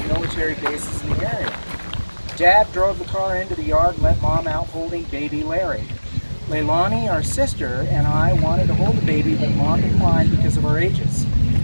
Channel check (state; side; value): inverted; both; correlation -1.00